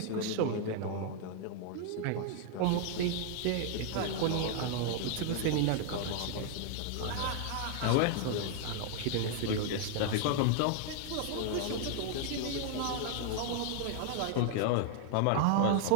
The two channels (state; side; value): different; both; correlation 0.00